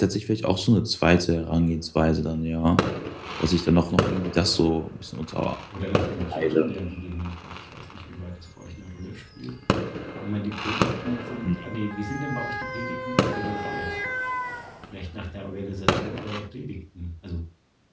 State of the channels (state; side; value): identical; both; correlation 1.00